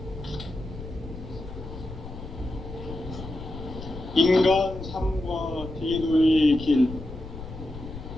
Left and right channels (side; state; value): left; noise; rumble, 11 dB below the sound